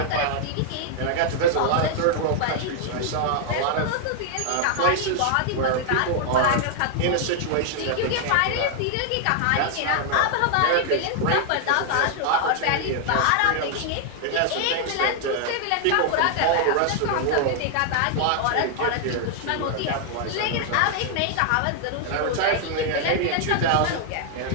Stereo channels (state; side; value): different; both; correlation 0.00